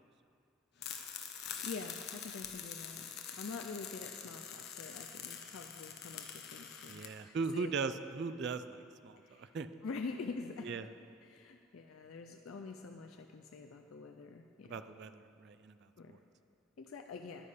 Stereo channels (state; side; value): normal; both; correlation 0.35